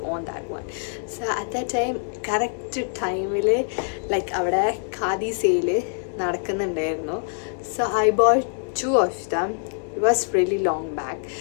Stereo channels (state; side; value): silent; right; digital silence